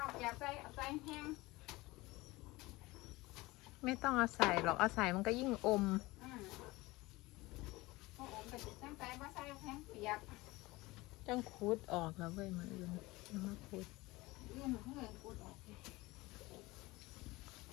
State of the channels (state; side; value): quieter; right; 21.0 dB